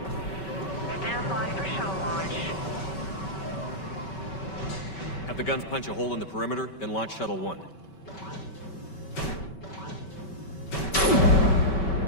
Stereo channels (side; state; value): right; late; 5.2 ms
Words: Stand by for shuttle launch. Have the guns punch a hole in the perimeter, then launch Shuttle 1.